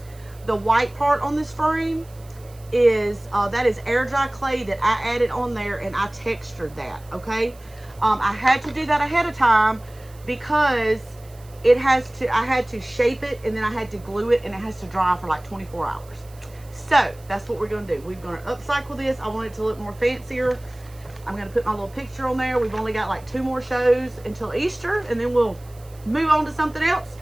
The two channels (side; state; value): right; noise; hiss, 26 dB below the sound